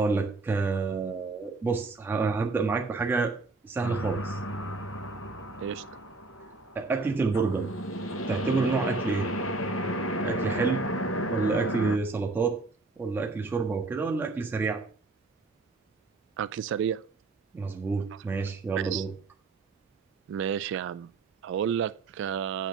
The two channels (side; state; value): left; quieter; 3.6 dB